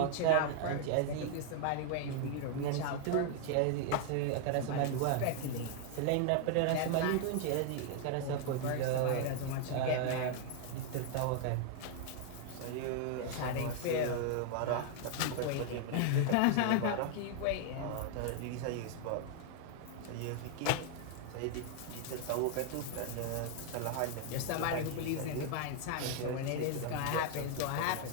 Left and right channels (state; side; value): different; both; correlation 0.00